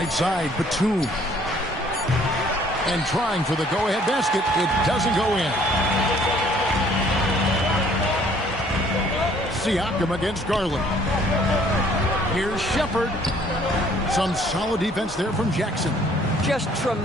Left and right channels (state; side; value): normal; both; correlation 0.59